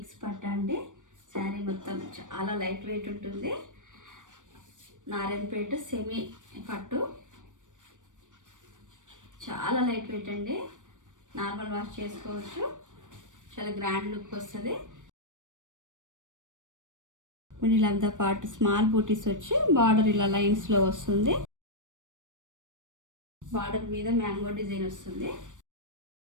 పట్టు అండి. శారీ మొత్తం చాలా లైట్ వెయిట్ ఉంటుంది. నారాయణపేట సెమీ పట్టు చాలా లైట్ వెయిట్ అండి. నార్మల్ వాష్ చేసుకోవచ్చు. చాలా గ్రాండ్ లుక్ వస్తుంది. మిడిల్ పార్ట్ స్మాల్ బూటీస్ వచ్చి బార్డర్ ఇలా లైన్స్లో వస్తుంది. బార్డర్ మీద మ్యాంగో డిజైన్ వస్తుంది.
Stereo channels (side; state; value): left; late; 0.87 ms